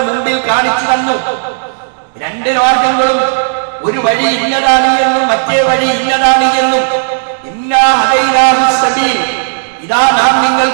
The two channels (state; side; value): silent; left; digital silence